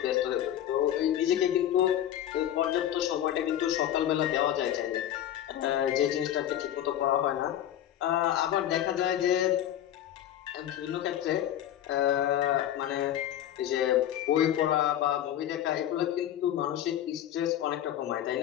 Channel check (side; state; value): right; quieter; 11.5 dB